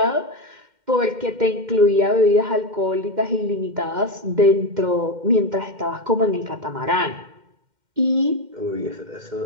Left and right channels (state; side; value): late; left; 2.1 ms